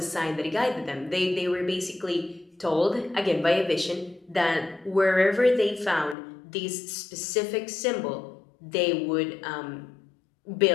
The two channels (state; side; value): drops out; right; at 6.2 s